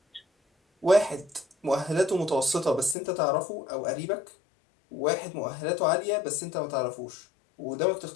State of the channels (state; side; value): drops out; right; at 3.0 s